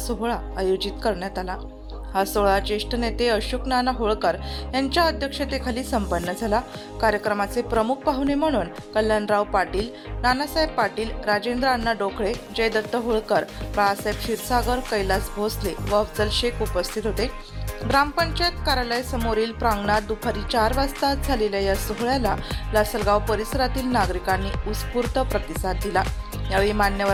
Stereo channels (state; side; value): identical; both; correlation 1.00